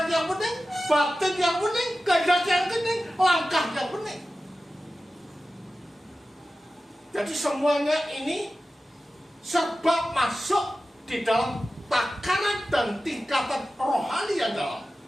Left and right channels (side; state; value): both; normal; correlation 0.94